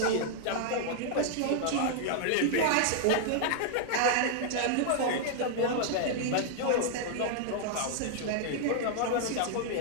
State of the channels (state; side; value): different; both; correlation -0.01